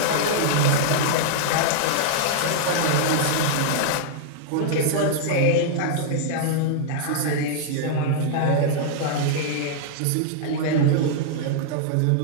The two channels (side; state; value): both; different; correlation -0.01